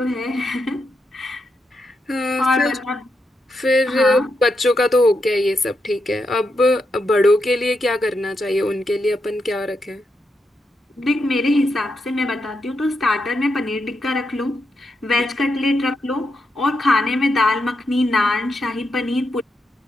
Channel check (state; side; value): normal; both; correlation 0.84